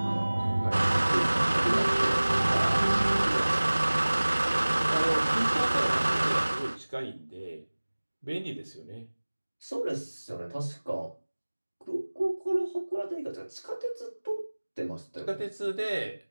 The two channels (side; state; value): both; inverted; correlation -1.00